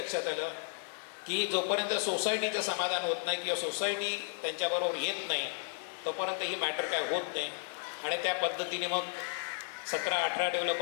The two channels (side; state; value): right; silent; 55 dB below the other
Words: आलं की जोपर्यंत सोसायटीचं समाधान होत नाही किंवा सोसायटी त्यांच्याबरोबर येत नाही तोपर्यंत ही मॅटर काय होत नाही. आणि त्या पद्धतीने मग 17-18